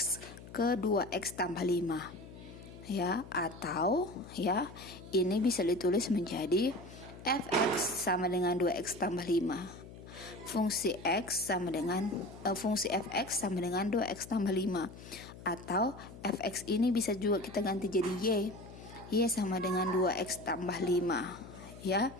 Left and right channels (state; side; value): noise; left; hum, 16 dB below the sound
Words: ke 2X tambah 5 ya, atau ya ini bisa ditulis menjadi Fx sama dengan 2X tambah 5. Fungsi X sama dengan fungsi Fx sama dengan 2X tambah 5, atau Fx ini bisa juga kita ganti jadi Y sama dengan 2X tambah 5 ya.